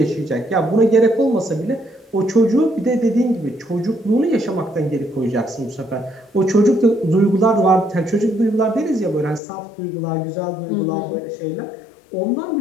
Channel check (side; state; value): right; drops out; at 9.4 s